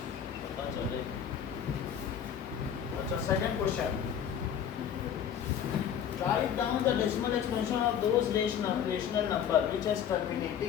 पता चले। अच्छा, second question, write down the decimal expansion of those rational number which has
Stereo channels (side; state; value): right; quieter; 8.8 dB